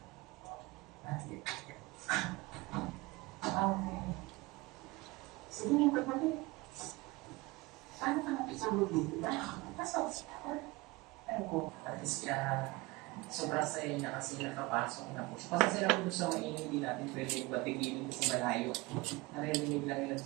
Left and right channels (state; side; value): quieter; left; 22.8 dB